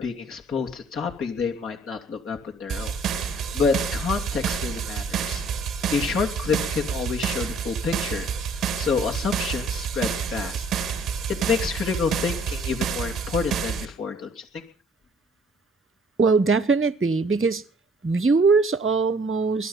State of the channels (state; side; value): normal; both; correlation 0.58